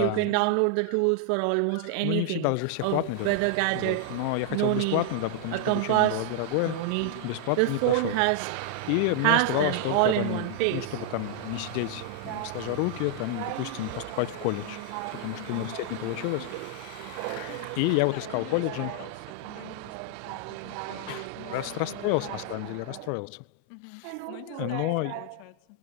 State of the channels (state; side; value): different; both; correlation 0.00